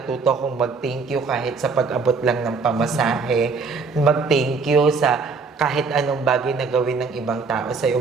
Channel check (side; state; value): left; quieter; 4.6 dB